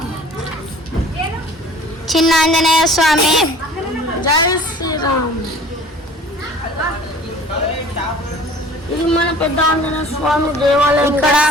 చిన్న ఆంజనేయ స్వామి. జై శ్రీరామ్. ఇది మన పెద్ద ఆంజనేయ స్వామి దేవాలయం. ఇక్కడ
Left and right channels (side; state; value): both; normal; correlation 0.47